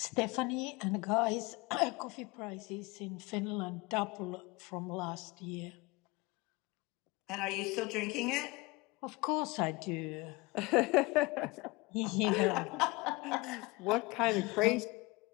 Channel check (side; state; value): right; quieter; 24.4 dB